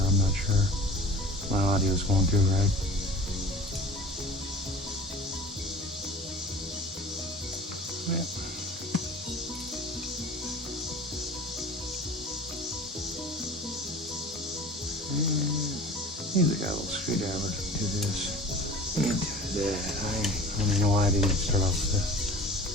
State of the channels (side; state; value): both; normal; correlation 0.41